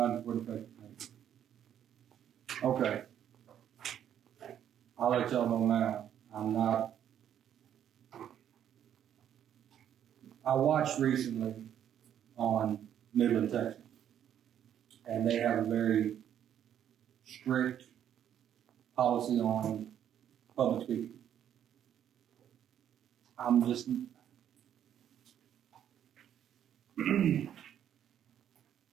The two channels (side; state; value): left; quieter; 10.0 dB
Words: for effective date. Okay. I'll let y'all know now. I watched recently on Midland, Texas, and they have a very strict policy on public speaking. I'm just, and